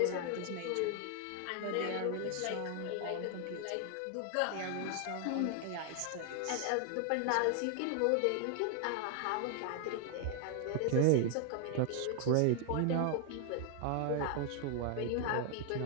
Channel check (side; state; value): both; different; correlation 0.00